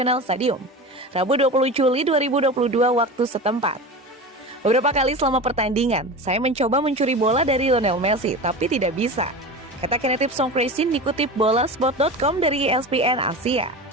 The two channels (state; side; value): normal; both; correlation 0.29